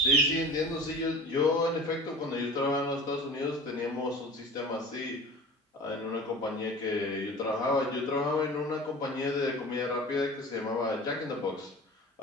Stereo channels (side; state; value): both; normal; correlation 0.38